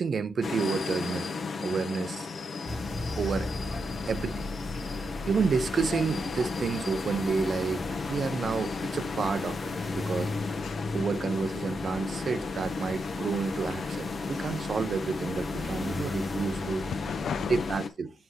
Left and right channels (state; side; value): normal; both; correlation 0.84